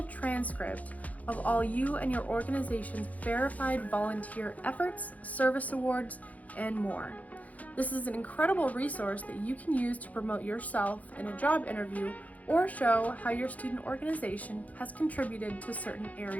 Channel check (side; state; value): right; late; 0.073 ms